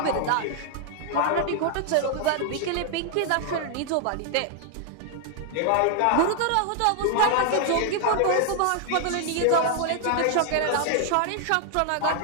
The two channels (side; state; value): both; different; correlation 0.00